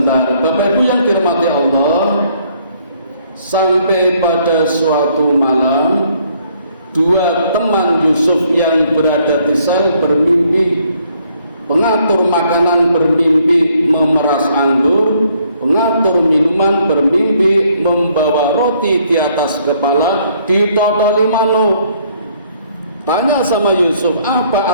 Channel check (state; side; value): inverted; both; correlation -0.66